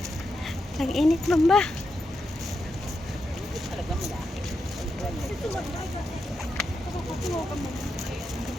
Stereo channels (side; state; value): both; normal; correlation 0.85